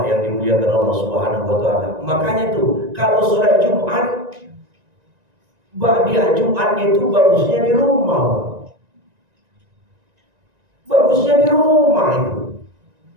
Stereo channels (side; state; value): left; late; 1.9 ms